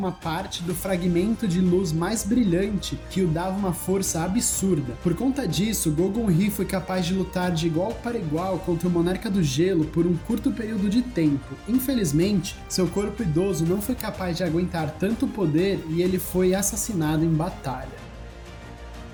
parte do fragmento de luz mais brilhante que o dava uma força absurda. Por conta disso, Gogun-Hi foi capaz de lutar de igual para igual contra o Monarca do Gelo por um curto período de tempo. Infelizmente, seu corpo idoso não foi capaz de aguentar tanto poder e ele foi assassinado em batalha.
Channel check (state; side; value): identical; both; correlation 1.00